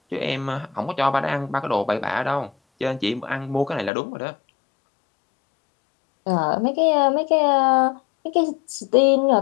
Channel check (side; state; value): right; drops out; at 3.9 s